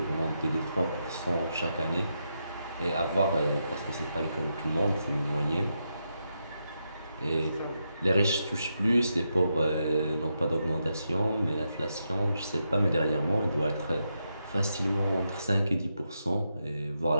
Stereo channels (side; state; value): both; inverted; correlation -0.84